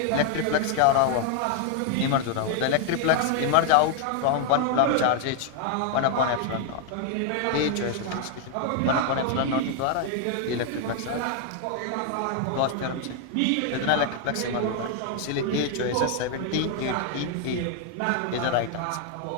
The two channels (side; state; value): both; different; correlation 0.00